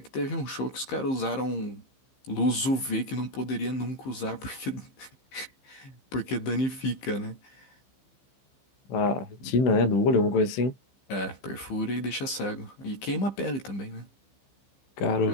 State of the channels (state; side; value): late; right; 15 ms